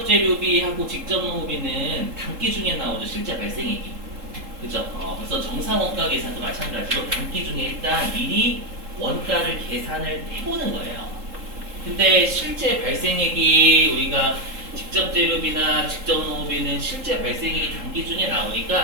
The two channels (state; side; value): late; left; 3.7 ms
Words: 재료비하고 직접 농업비는 단기 중에 나오죠. 실제 발생액이. 그죠? 그래서 정상 원가 계산도 마찬가지로 단기 중에 일단 미리 원가를 계산을 해보는 거예요. 근데 실제 발생액이 우리가 직접 재료비나 직접 농업비는 실제 발생액이 단기 중에